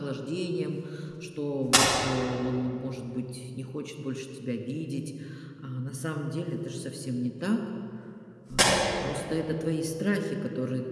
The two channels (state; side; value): identical; both; correlation 1.00